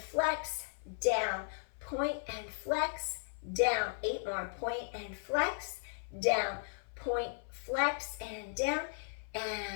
Down. Point and flex. Down. 8 more. Point and flex. Down. Point, flex, and down.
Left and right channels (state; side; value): silent; right; 54 dB below the other